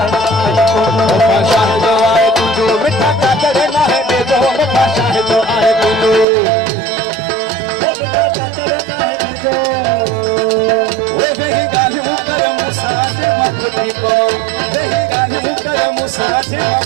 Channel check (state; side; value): drops out; left; at 6.2 s